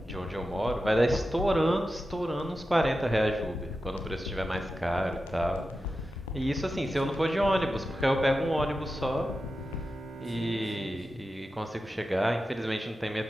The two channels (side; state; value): both; normal; correlation 0.91